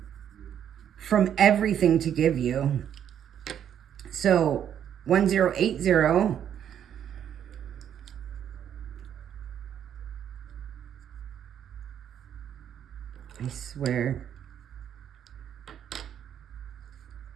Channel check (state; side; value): quieter; left; 9.4 dB